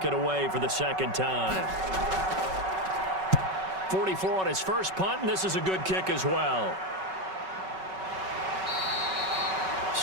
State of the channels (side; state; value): left; late; 5.3 ms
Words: it away for the second time. 44 on his first punt, and this is a good kick as well.